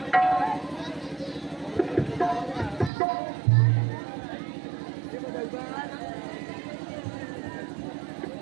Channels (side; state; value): left; drops out; at 2.9 s